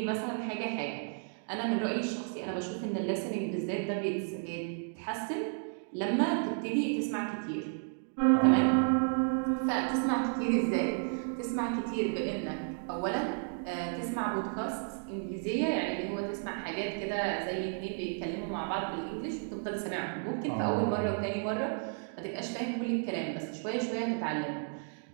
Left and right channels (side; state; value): left; silent; 56 dB below the other